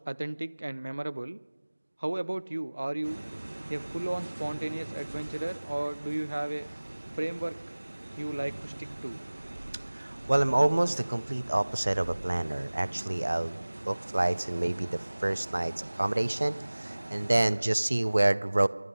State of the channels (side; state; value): both; inverted; correlation -1.00